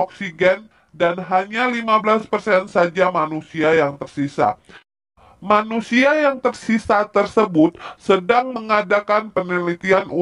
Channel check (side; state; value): both; identical; correlation 1.00